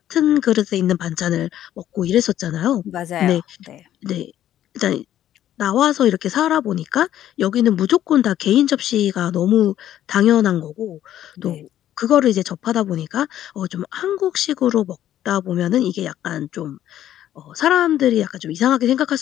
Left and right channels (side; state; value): right; quieter; 11.9 dB